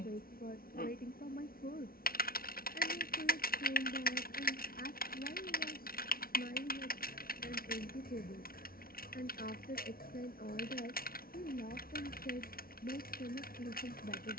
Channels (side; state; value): right; late; 0.43 ms